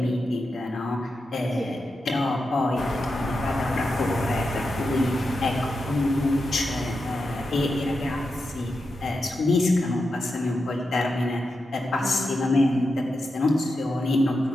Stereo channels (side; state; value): both; normal; correlation 0.88